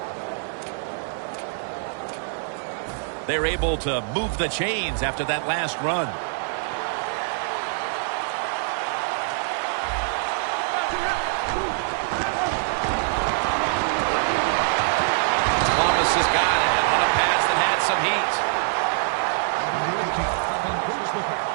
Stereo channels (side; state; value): left; silent; 62 dB below the other